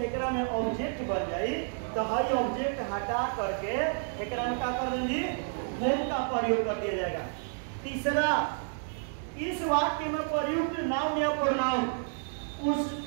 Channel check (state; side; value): silent; left; 57 dB below the other